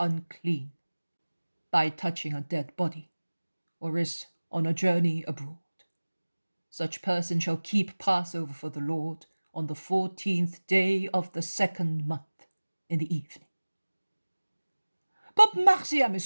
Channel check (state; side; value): inverted; both; correlation -1.00